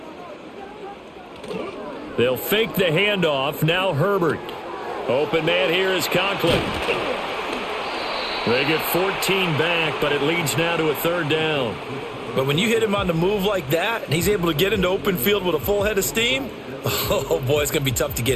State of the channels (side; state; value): both; identical; correlation 1.00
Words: They'll fake the handoff. Now Herbert. Open man here is Conklin. They get 14 back, but it leads now to a 3rd down. But when you hit him on the move like that, and he's able to get into open field with a full head of steam, oh boy, it's going to be tough to